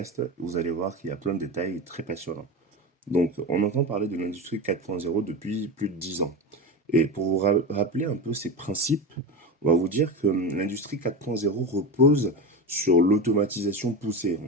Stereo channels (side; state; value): both; normal; correlation 0.22